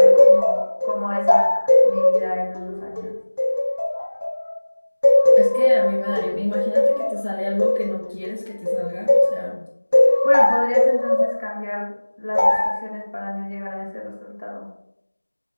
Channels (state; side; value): inverted; both; correlation -1.00